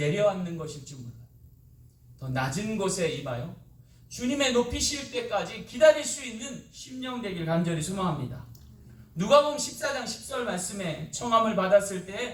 것일지 몰라요. 더 낮은 곳에 임하여 주님의 높이실 때까지 기다릴 수 있는 심령 되길 간절히 소망합니다. 누가복음 14장 10절 말씀에 청함을 받았을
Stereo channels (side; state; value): both; identical; correlation 1.00